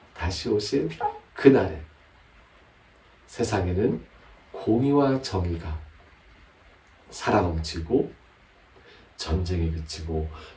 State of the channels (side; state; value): both; identical; correlation 1.00